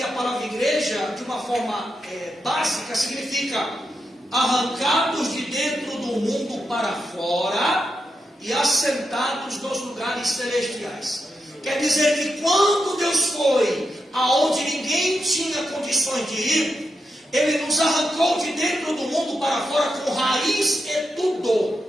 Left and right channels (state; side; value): normal; both; correlation 0.86